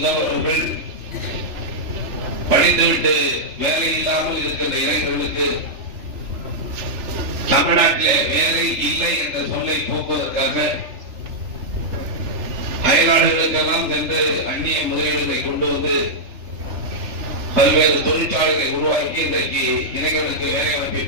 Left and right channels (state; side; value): late; left; 3.4 ms